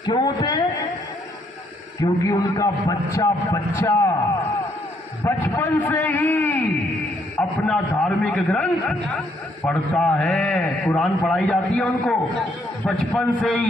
क्यों होते हैं? क्योंकि उनका बच्चा बचपन से ही अपना धार्मिक ग्रंथ पढ़ता है। कुरान पढ़ाई जाती है उनको बचपन से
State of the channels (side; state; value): both; normal; correlation 0.71